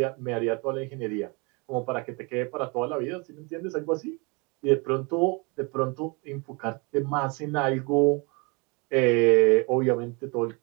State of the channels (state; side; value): quieter; left; 30.2 dB